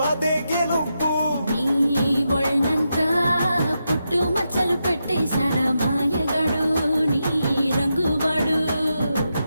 అదే గెలుపు. నీ ఒళ్ళంతా పుట్టు మచ్చలు పెట్టేశాడ మాయగాడు నీ రంగువాడు.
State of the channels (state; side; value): inverted; both; correlation -0.86